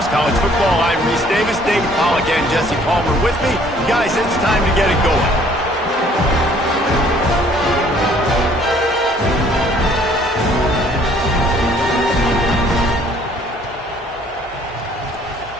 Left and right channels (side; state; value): both; normal; correlation 0.59